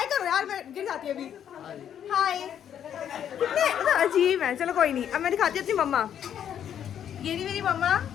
करो यार, मैं गिर जाती है अभी। हाय। कितने अजीब है। चलो कोई नहीं, अब मैं दिखाती हूँ अपनी मम्मा। ये नहीं मेरी मम्मा,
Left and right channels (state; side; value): quieter; right; 9.4 dB